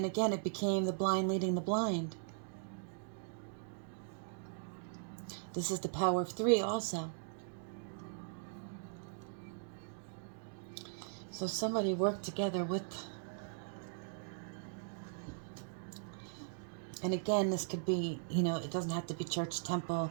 again, it became the blind leading the blind. This is the power of 3 also. So somebody worked together with, and again, this could be, it doesn't have to be church, temple.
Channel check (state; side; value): silent; left; digital silence